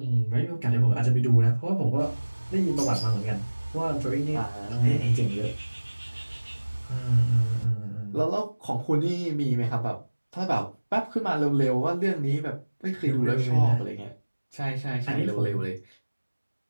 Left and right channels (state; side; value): inverted; both; correlation -1.00